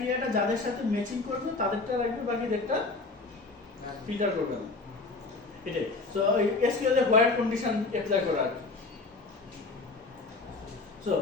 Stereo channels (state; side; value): quieter; right; 3.6 dB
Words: যাদের সাথে ম্যাচিং করবে তাদেরটা রাখবে, বাকিদেরটা ফিল্টার করবে না, এটাই। সো এই SQL a while condition apply করা আর কি। সো